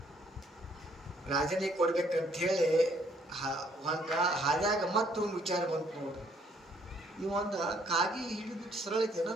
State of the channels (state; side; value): normal; both; correlation 0.65